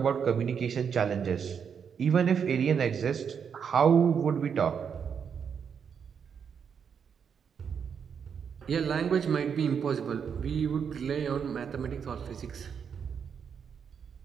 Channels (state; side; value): quieter; left; 7.1 dB